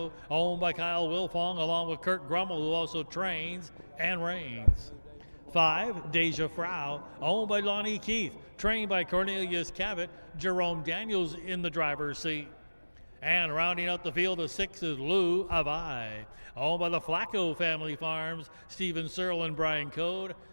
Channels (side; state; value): both; inverted; correlation -1.00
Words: owned by Kyle Wilfong, along with Kurt Grummel, who also trains and reigns. 5, Deja Frau, owned by Lonnie Keith, trained by Cornelius Cavett. Jerome Daniels in the driver's seat. And rounding out the field of 6 is Lou Avai, owned by the Flacco family farms. Stephen Searle and Brian Code.